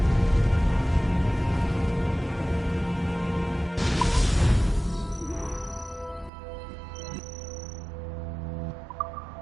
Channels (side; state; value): left; drops out; at 6.3 s